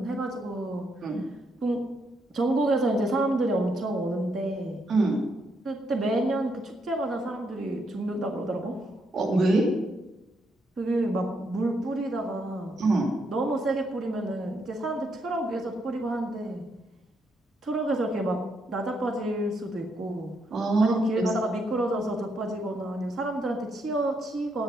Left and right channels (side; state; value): both; normal; correlation 0.77